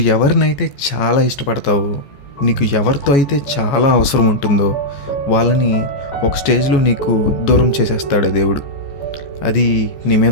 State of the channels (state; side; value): late; right; 14 ms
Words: ఎవరినైతే చాలా ఇష్టపడతావో, నీకు ఎవరితో అయితే చాలా అవసరం ఉంటుందో వాళ్ళని ఒక స్టేజ్లో నీకు దూరం చేసేస్తాడు దేవుడు. అది నీ